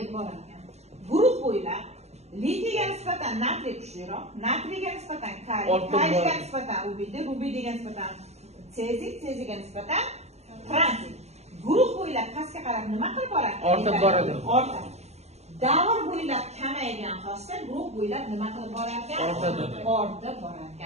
borar ekan. Guruh bo'ylab litiyga nisbatan natriy kuchliroq, natriyga nisbatan kaliy, kaliyga nisbatan rubidiy, rubidiyga nisbatan seziy, seziyga nisbatan franciy. Guruh bo'ylab pastga qarab nima qilib boradi? Ortib boradi. Ortadi. Davr bo'ylab kamaygan xossa guruh bo'ylab nima qilib borar ekan? Ortadi. Ortib borar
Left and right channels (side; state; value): left; late; 0.31 ms